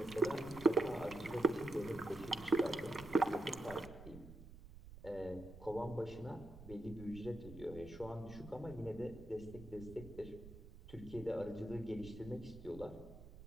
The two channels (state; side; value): noise; right; rumble, 15 dB below the sound